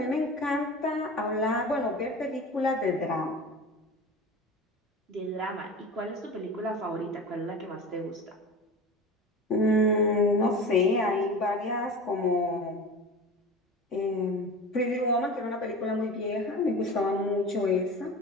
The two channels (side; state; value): both; normal; correlation 0.33